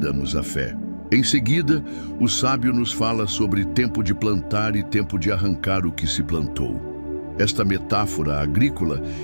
a fé. Em seguida, o sábio nos fala sobre tempo de plantar e tempo de arrancar o que se plantou. Esta metáfora agrícola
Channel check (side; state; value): both; inverted; correlation -1.00